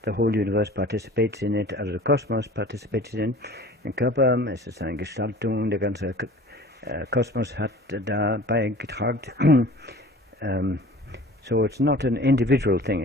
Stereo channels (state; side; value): normal; both; correlation 0.43